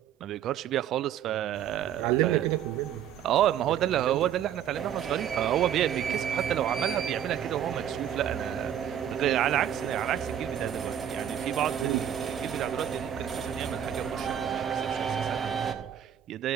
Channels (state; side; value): quieter; left; 9.8 dB